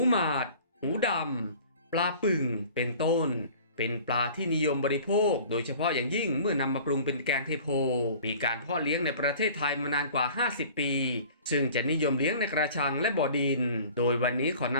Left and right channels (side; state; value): both; inverted; correlation -0.46